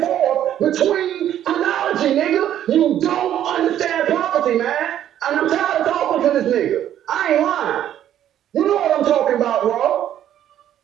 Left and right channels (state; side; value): quieter; left; 11.1 dB